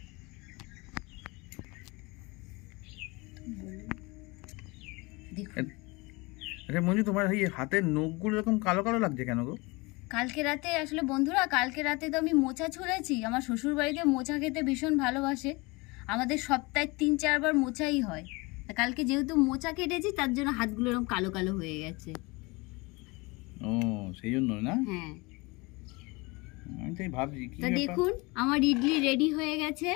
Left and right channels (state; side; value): quieter; right; 25.5 dB